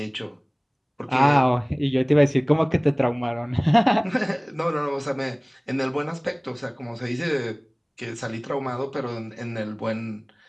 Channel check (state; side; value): identical; both; correlation 1.00